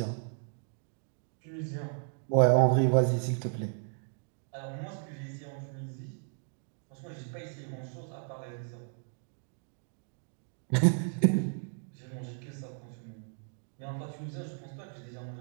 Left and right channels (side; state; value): left; silent; 55 dB below the other